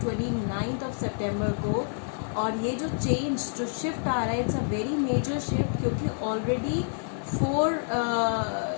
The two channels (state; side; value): silent; right; digital silence